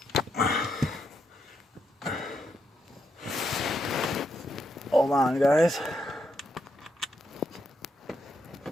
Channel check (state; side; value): normal; both; correlation 0.80